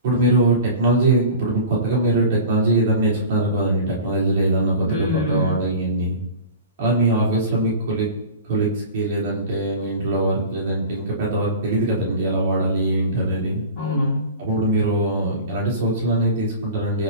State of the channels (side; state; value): both; inverted; correlation -0.37